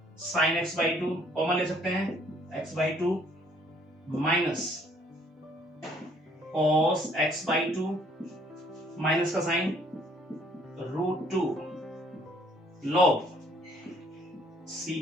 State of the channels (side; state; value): both; normal; correlation 0.62